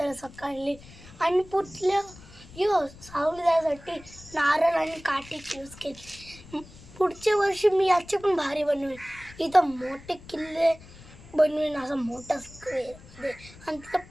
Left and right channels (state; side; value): noise; left; rumble, 20 dB below the sound